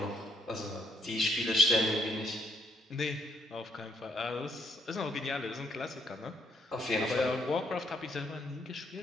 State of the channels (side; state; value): both; normal; correlation 0.73